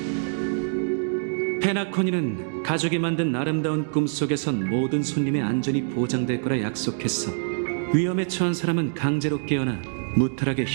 페나코니는 가족이 만든 아름다운 꿈속에선 모든 손님의 안전이 보장될 거라 약속했어. 위험에 처한 사람은 강제로 깨어나 무탈하게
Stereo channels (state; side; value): silent; left; digital silence